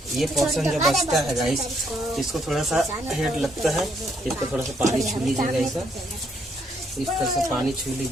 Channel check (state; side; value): normal; both; correlation 0.72